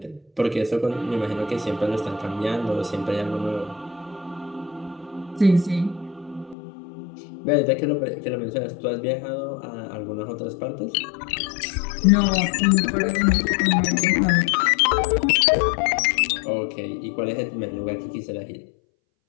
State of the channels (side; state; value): right; drops out; at 6.6 s